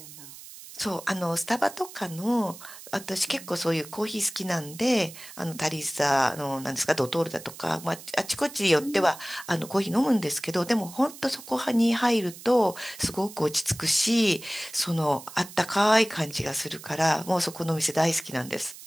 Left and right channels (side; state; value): right; noise; hiss, 16 dB below the sound